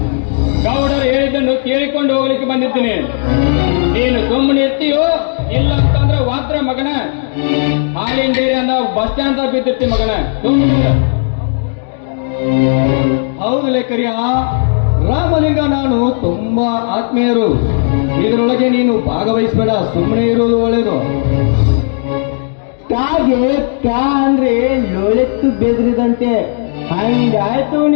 ಗೌಡರು ಹೇಳಿದ್ದನ್ನು ಕೇಳಿಕೊಂಡು ಹೋಗ್ಲಿಕ್ಕೆ ಬಂದಿದ್ದೀನಿ. ನೀನು ಸುಮ್ಮನೆ ಇರ್ತೀಯೋ ಇಲ್ಲ ಅಂತಂದ್ರೆ ವಾತ್ರ ಮಗನ ಹಾಲಿನ ಡೇರಿ ಅಂದ ಬಸ್ ಸ್ಟ್ಯಾಂಡ್ ಬಿದ್ದಿರ್ತಿ ಮಗನ. ಹೌದು ಲೇಖರಿಯ, ರಾಮಲಿಂಗ ನಾನು ತುಂಬಾ ಆತ್ಮೀಯರು. ಇದರೊಳಗೆ ನೀನು ಭಾಗವಹಿಸಬೇಡ, ಸುಮ್ಮನೆ ಇರುವುದು ಒಳ್ಳೆಯದು. ಕಾಗೆ ಕಾ ಅಂದ್ರೆ ಲೋಳೆತ್ತು ಬೆದ್ರಿದಂತೆ ಹಂಗಾಯ್ತು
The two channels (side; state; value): right; silent; 71 dB below the other